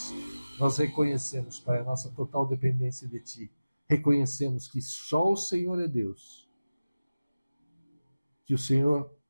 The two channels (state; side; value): inverted; both; correlation -0.97